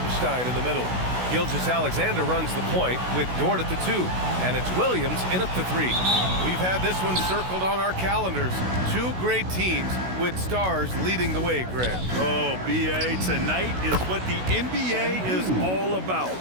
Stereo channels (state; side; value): late; left; 16 ms